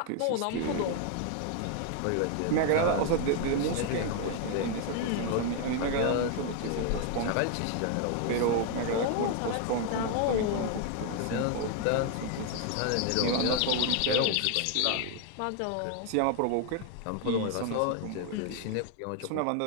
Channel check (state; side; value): different; both; correlation 0.01